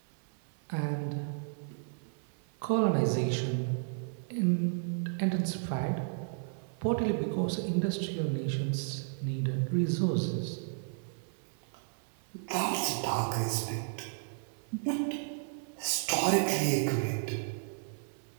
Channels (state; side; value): silent; left; 56 dB below the other